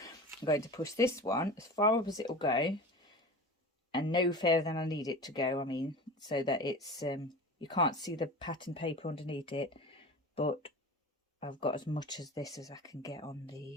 going to push this one as far up as it will go, and no further than I need it to go. I mean, so that it's you can't see the pattern paper underneath it, but I've got as much as this as I can get on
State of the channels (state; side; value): normal; both; correlation 0.34